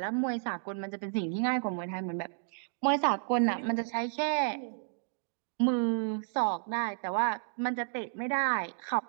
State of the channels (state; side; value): silent; left; digital silence